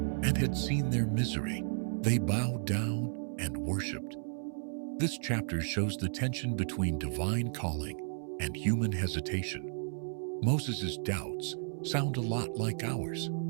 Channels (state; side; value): silent; left; 55 dB below the other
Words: and had seen their misery, they bowed down and worshipped. This chapter shows the tension between divine calling and human hesitation. Moses' doubts sound a lot like ours.